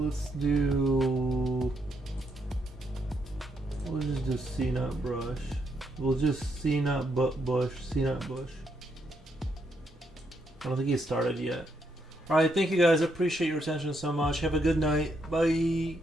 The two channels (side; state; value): both; normal; correlation 0.77